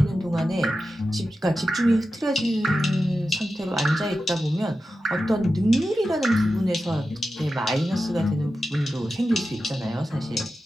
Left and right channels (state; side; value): normal; both; correlation 0.92